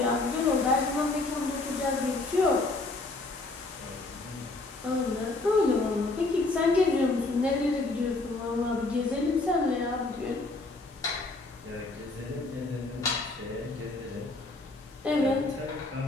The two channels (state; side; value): quieter; right; 3.2 dB